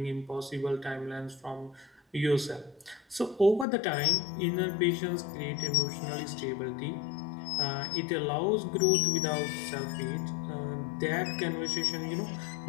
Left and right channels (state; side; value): drops out; right; at 3.7 s